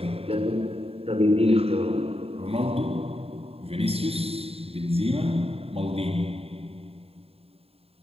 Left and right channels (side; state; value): left; late; 0.28 ms